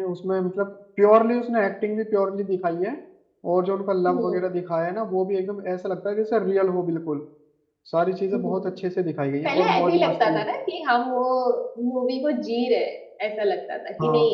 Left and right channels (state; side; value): identical; both; correlation 1.00